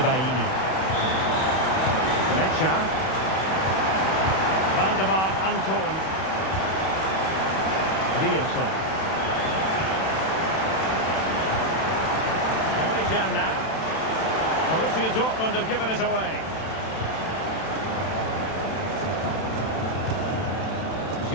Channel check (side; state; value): right; late; 31 ms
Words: Mecha. Valdemar Anton. Riosson. Only Jan now. Borussia Dortmund have given it away.